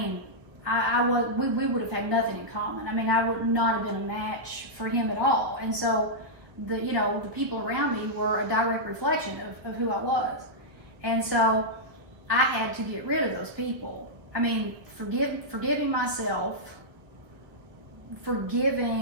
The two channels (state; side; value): late; left; 1.0 ms